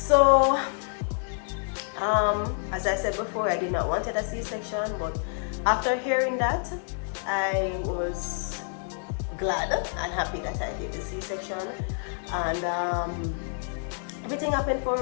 as I said before, I did not want a C-section, but after hearing that, I was glad and happy that I did the C-section, and everything happened for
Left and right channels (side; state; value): right; silent; 57 dB below the other